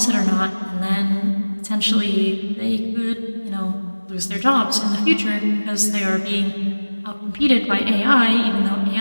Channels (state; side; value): inverted; both; correlation -1.00